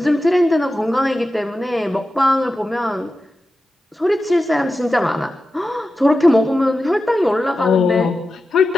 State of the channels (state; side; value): normal; both; correlation 0.92